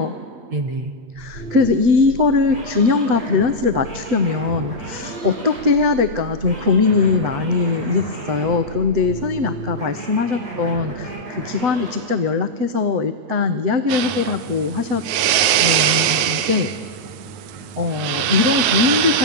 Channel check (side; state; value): left; late; 9.3 ms